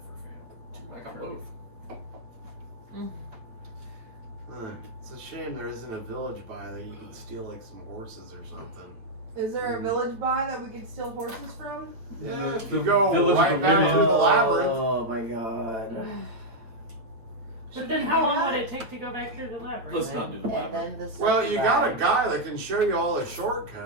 failed. I got both. It's a shame there isn't a village by that you can steal like some horses or something. Is there a village by that we could steal horses from? Yeah, if the you go village of right the back women. to the labyrinth. Oh my god. But then how long would it take to go back through the labyrinth? Let's not do the And labyrinth. then the Well, second you got a bag. guy that can show you all the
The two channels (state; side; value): late; left; 8.8 ms